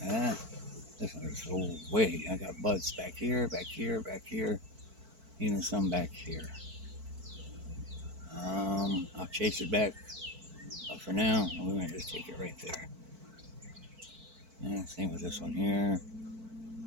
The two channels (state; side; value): late; left; 4.5 ms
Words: This one is so way. I got buds back here, back here, back here, even some back here. I'll chase it back, but for now, we're gonna just take it right there. Same with this one here.